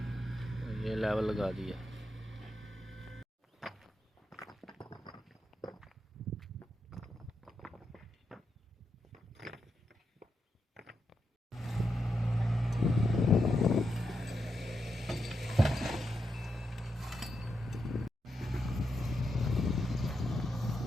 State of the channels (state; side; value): normal; both; correlation 0.85